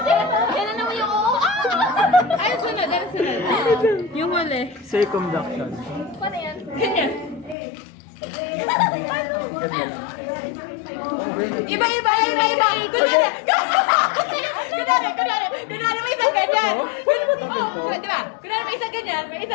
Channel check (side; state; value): right; drops out; at 7.6 s